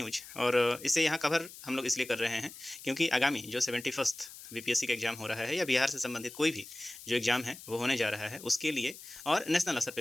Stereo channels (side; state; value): left; noise; hiss, 15 dB below the sound